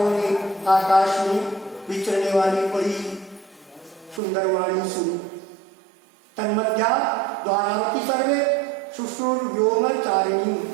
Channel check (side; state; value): left; drops out; at 4.2 s